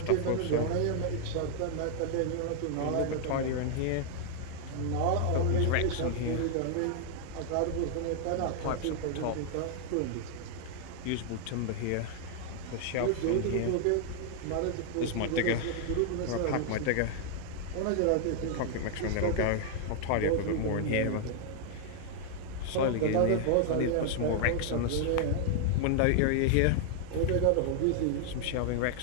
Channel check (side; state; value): both; different; correlation 0.00